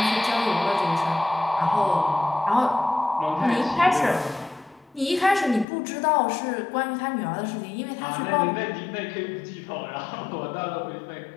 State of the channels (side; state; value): right; drops out; at 5.7 s